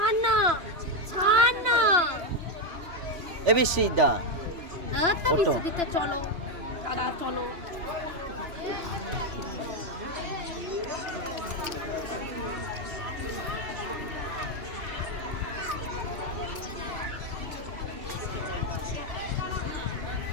না, ছাড় না। এবার সিদ্ধা তো বিশ্বজিতে চলো দাদা, চলো।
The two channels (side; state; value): left; late; 2.9 ms